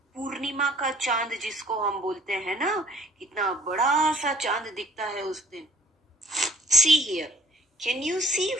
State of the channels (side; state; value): both; normal; correlation 0.58